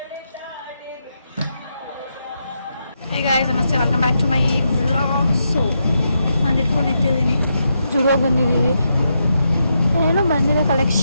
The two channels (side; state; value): both; inverted; correlation -0.83